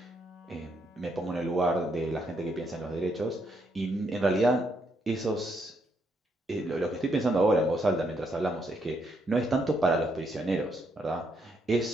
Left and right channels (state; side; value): normal; both; correlation 0.75